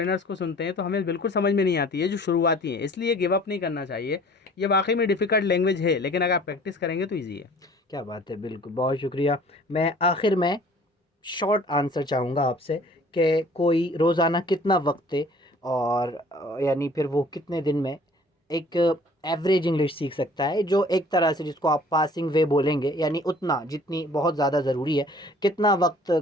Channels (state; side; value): normal; both; correlation 0.51